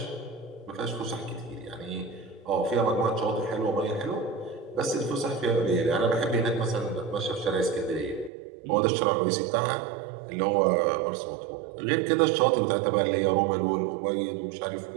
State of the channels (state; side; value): drops out; left; at 8.3 s